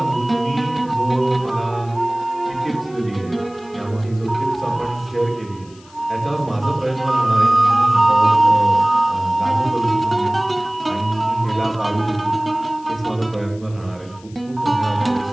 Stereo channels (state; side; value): noise; left; hiss, 26 dB below the sound